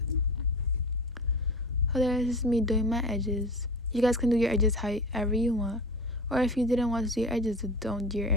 So there's me doing my edges. You guys can do your edges however you want. Or if you didn't want to do your edges, don't do your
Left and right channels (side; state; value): both; normal; correlation 0.33